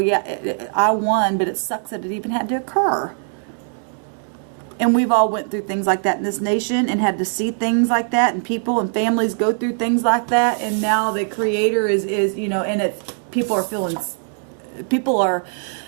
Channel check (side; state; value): left; silent; 64 dB below the other